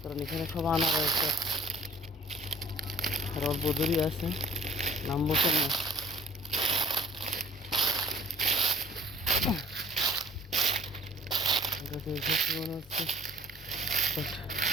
কারণ এখানে সব আনা রয়েছে। আর অল্প দূরই আছে, নামবো তো না। জায়গাতে এসেছি মনে হচ্ছে।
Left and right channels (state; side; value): normal; both; correlation 0.51